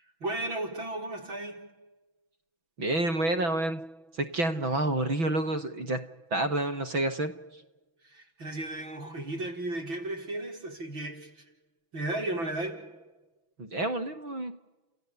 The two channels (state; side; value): late; left; 6.1 ms